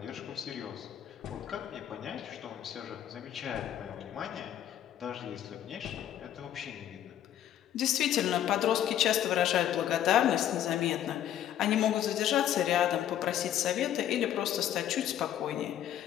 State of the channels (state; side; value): quieter; right; 11.1 dB